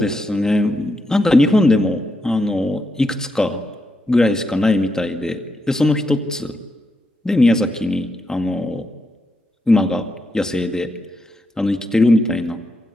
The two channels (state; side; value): normal; both; correlation 0.82